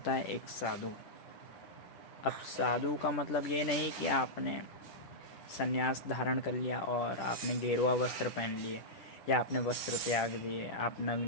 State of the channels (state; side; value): late; right; 10 ms